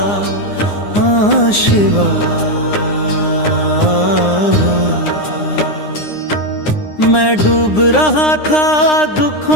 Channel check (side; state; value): right; late; 9.8 ms